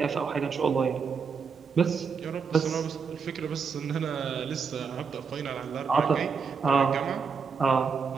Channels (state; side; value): quieter; left; 5.7 dB